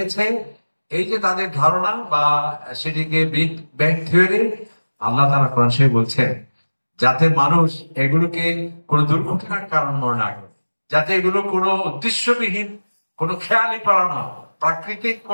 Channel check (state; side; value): inverted; both; correlation -1.00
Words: এই যে তাদের ধারণা বা সেটিকে বিগ ব্যাং থিওরি, আল্লাহ তাআলা কোরআন শরীফে বলছেন যাতে মানুষ এগুলোকে কোনো দুর্ঘটনার কারণ মনে না করে, যাতে এগুলো কোনো উদ্দেশ্যবিহীন কোনো খেয়ালিপনা নয়, প্রাকৃতিক